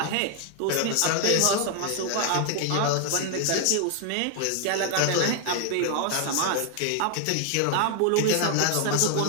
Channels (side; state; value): both; different; correlation 0.00